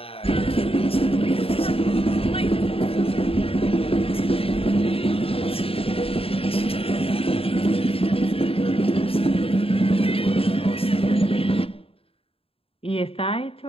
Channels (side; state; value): right; late; 0.27 ms